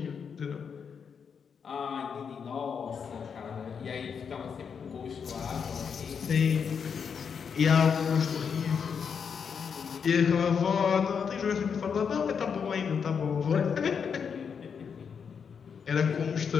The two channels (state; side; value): quieter; right; 6.6 dB